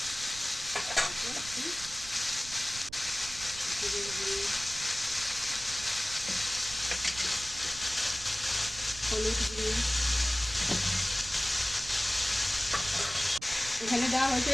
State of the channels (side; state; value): right; noise; rumble, 15 dB below the sound